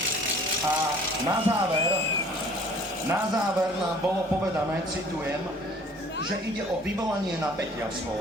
A na záver nám bolo povedané, citujem, že ide o vyvolanie napätia v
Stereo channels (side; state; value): both; normal; correlation 0.52